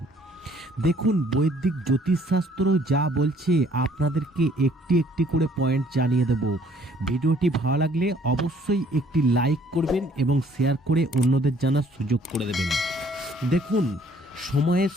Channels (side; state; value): both; normal; correlation 0.60